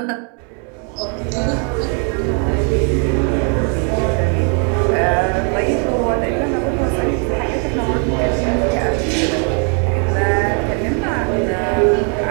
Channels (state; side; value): quieter; left; 40.0 dB